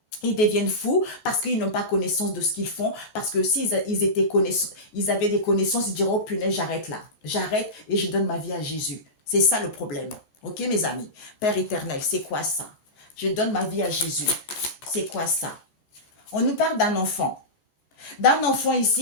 Ils deviennent fous parce qu'ils n'ont pas connaissance de ce qu'ils font. Parce que s'ils ils avaient des connaissances, ils diront, oh punaise, j'arrête là. J'arrête et je donne ma vie à Jésus. C'est ça le problème. Ok, mes amis? Père éternel, c'est quoi ça? Je donne ma vie à Jésus. C'est quoi ça? On nous parle d'un enfant. D'un enfant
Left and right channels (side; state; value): right; late; 14 ms